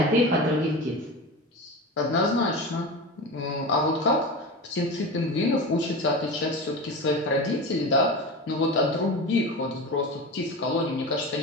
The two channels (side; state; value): both; normal; correlation 0.27